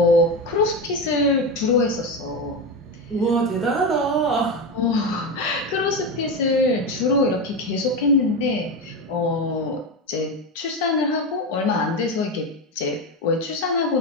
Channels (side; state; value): both; normal; correlation 0.16